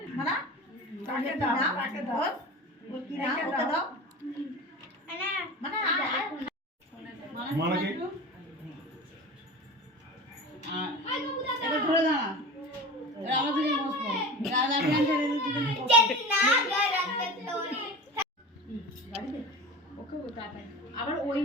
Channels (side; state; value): both; normal; correlation 0.33